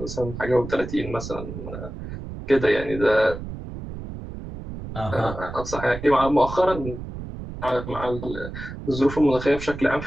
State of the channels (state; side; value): noise; right; rumble, 10 dB below the sound